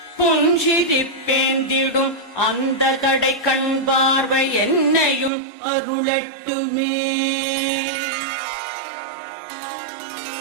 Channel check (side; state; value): left; drops out; at 5.3 s